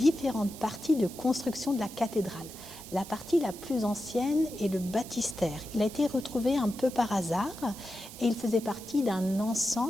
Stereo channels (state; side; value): noise; right; hiss, 15 dB below the sound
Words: parties de construction de la cathédrale. La partie la plus ancienne est le baptistère. Il a été retrouvé un peu par hasard et il faisait partie d'un